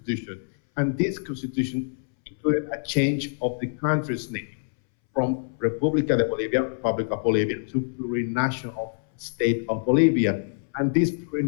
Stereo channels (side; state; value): right; silent; 61 dB below the other